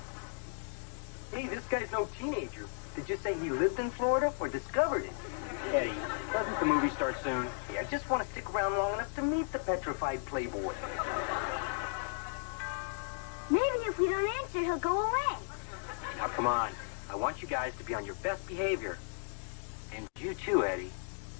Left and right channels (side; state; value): right; silent; digital silence